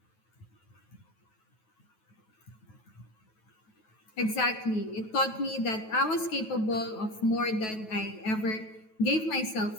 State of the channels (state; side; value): late; right; 9.2 ms